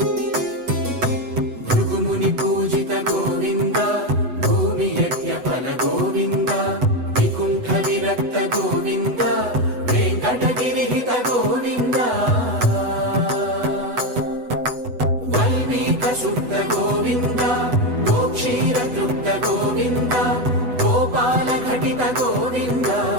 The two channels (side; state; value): left; late; 8.0 ms